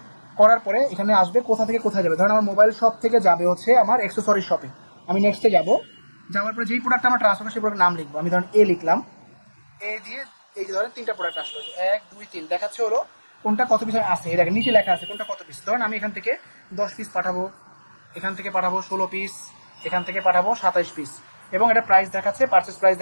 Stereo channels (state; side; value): inverted; both; correlation -1.00